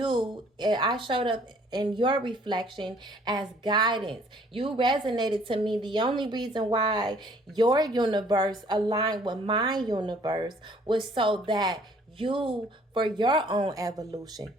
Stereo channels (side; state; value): both; normal; correlation 0.59